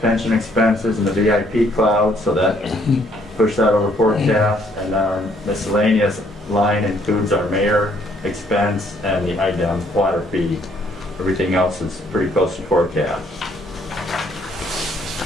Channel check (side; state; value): both; normal; correlation 0.66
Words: expenses, and the VIP cloud, so that pushed that over forecast. And our miscellaneous line includes our mayor expense and the IDEM water fee. Everything else is pretty close to forecast.